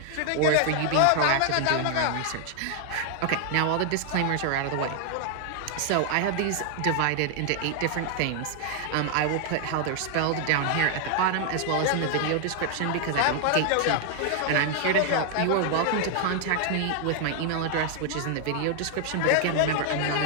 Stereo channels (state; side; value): different; both; correlation 0.00